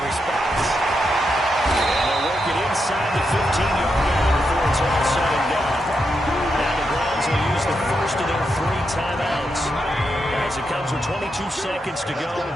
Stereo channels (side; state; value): both; normal; correlation 0.84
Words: response. And they'll work it inside the 15-yard line before it's all said and done. Now the Browns will use the first of their 3 timeouts as it comes with 22 seconds to go